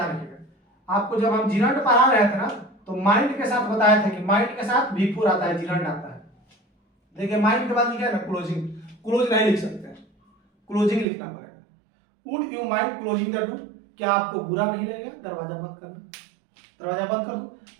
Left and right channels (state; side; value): drops out; left; at 11.1 s